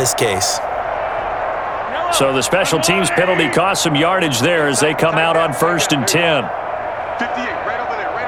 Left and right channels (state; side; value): identical; both; correlation 1.00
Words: case. So the special teams penalty cost some yardage there as they come out on 1st and 10. 58, right over there, right